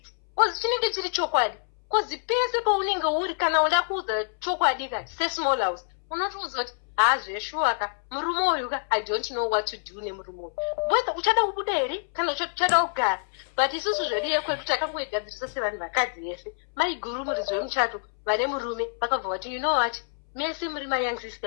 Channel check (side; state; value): right; silent; 60 dB below the other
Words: because chinenge chiri chokwadi because pese paunenge uri kana uda kuudza chokwadi kati sesmall house unotoudza kuti hazveshuwaka murume uyuka I don't know what to do nemurume uyu whether uchada kubuda here kana uchada kugara but isusu zvedu yekwedu takangoigadzirisa sevanhu vakadzi yese maiguru muridzi wemuchato vane murume vakabva vati you know what mese muri mayoung